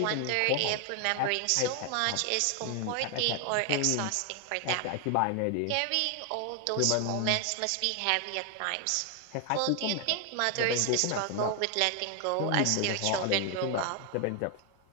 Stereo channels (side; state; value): both; different; correlation 0.00